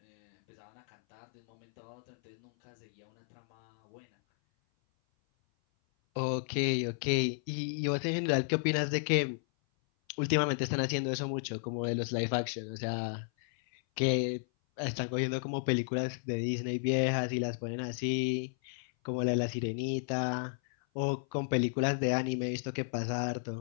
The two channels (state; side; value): silent; right; 56 dB below the other